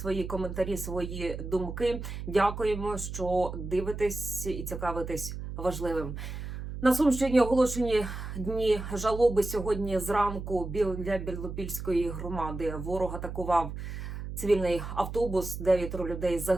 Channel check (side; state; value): right; noise; hum, 7 dB below the sound